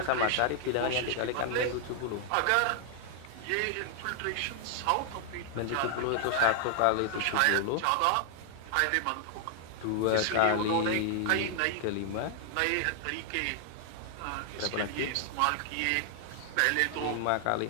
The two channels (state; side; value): different; both; correlation 0.00